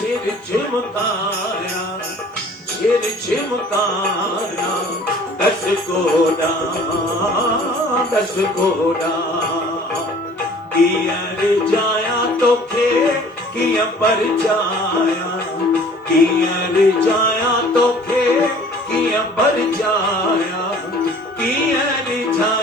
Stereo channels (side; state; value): both; normal; correlation 0.50